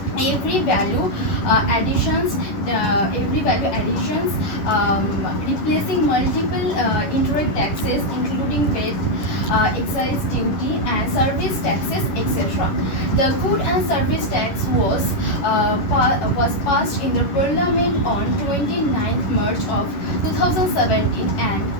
every value additions, replacing multiple indirect taxes including VAT, excise duty and service taxes, etc. The good and service tax was passed in the parliament on 29th March of 2017 and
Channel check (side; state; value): right; late; 11 ms